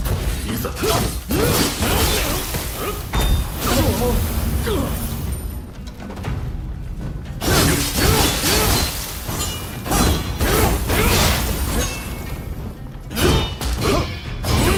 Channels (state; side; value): identical; both; correlation 1.00